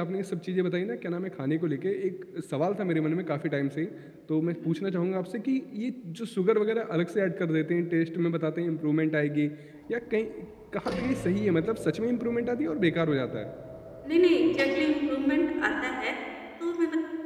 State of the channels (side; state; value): both; identical; correlation 1.00